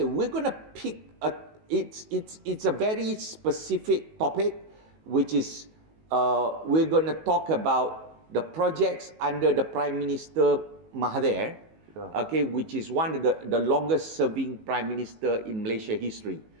we're going to pick it's a very specific topic, which is we're going to talk about the projects under the Prime Minister Mahathir, okay, which is one of the longest serving prime minister in Malaysia history.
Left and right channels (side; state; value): left; late; 19 ms